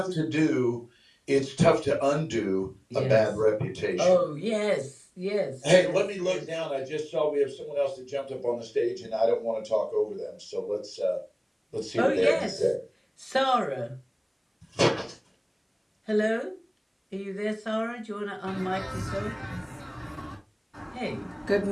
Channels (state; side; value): identical; both; correlation 1.00